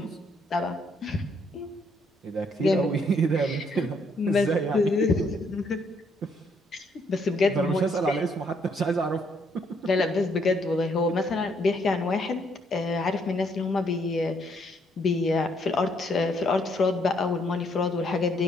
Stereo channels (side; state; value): both; normal; correlation 0.70